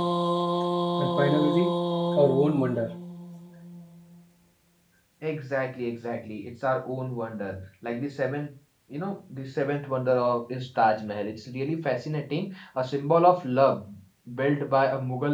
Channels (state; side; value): identical; both; correlation 1.00